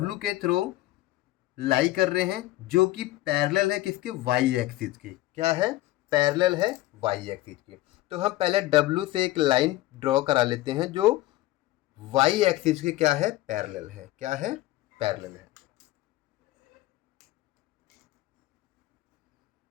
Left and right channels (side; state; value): right; quieter; 16.9 dB